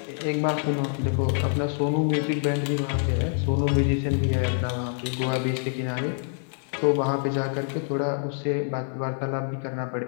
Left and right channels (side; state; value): right; silent; 58 dB below the other